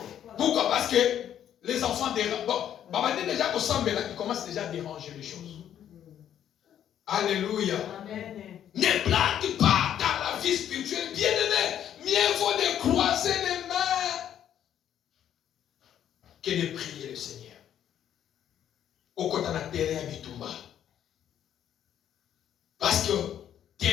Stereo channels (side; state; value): right; quieter; 10.2 dB